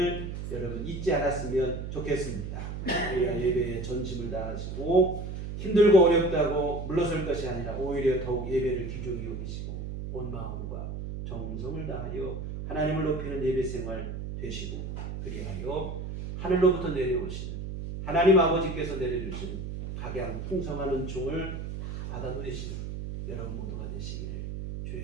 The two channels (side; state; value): right; noise; hum, 6 dB below the sound